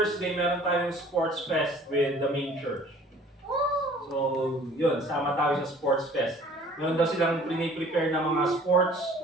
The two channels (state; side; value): normal; both; correlation 0.51